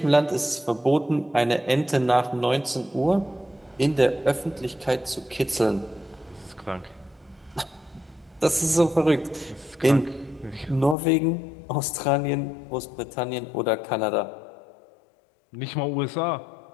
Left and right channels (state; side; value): drops out; right; at 11.0 s